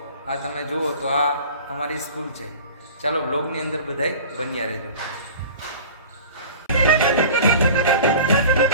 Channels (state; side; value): inverted; both; correlation -0.40